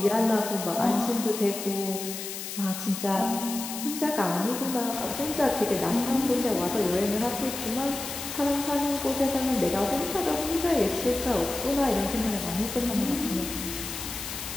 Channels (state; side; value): noise; left; hiss, 7 dB below the sound